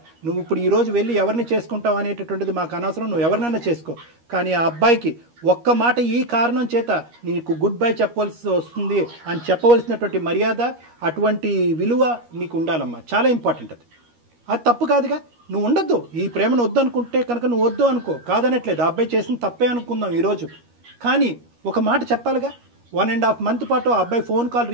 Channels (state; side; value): late; left; 13 ms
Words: నువ్వు ఇప్పుడు ఈరోజు వెళ్ళి ఎవరిని చేసుకుంటావు అనేటటువంటిది మాకు అనవసరం, నువ్వు ఎవరినైనా చేసుకో. కానీ ఆ అబ్బాయికి ఒక్క మాట ఈ కారణం చేత నీకు గుడ్ బై చెప్పవలసి వస్తుంది అని చెప్పవలసినటువంటి మర్యాద, అటువంటి విలువ నీకు ఉండాలమ్మా. చాలా ఇంపార్టెంట్ అది తప్పు కాదుగా. నువ్వు ఉండొద్దు, ఈ ప్రేమను వద్దు అనుకుంటే కనుక నువ్వు వద్దు అనుకో, కాదనట్లేదు. ఆ అబ్బాయి చేసిన తప్పే అనుకుందాం ఈరోజు, కానీ ఒక మాట చెప్పాలిగా. 1.5 month పాటు ఆ అబ్బాయి ఫోన్ కాల్